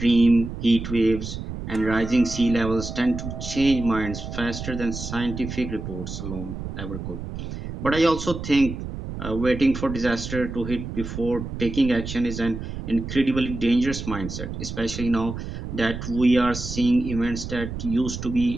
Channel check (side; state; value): right; noise; rumble, 7 dB below the sound